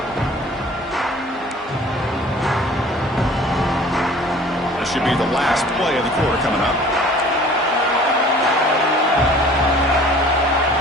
Should be the last play of the quarter coming up.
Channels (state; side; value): normal; both; correlation 0.49